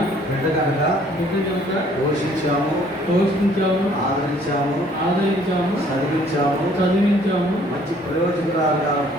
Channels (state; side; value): normal; both; correlation 0.59